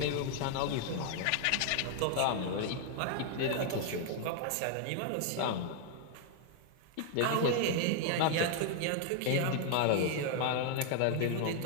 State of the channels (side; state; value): both; different; correlation 0.00